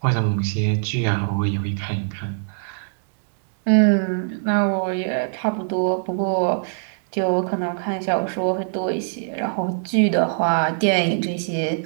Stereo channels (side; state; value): left; silent; 64 dB below the other